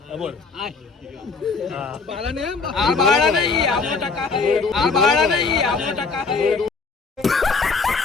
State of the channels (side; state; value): right; quieter; 4.5 dB